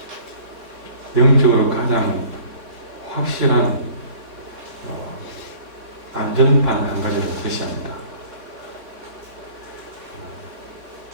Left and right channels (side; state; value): left; late; 3.9 ms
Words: 영적으로 가장 확실한 안전판 한 가지를 제시합니다.